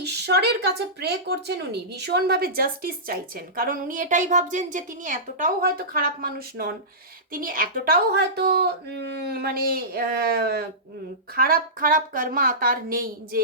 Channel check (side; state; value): both; normal; correlation -0.19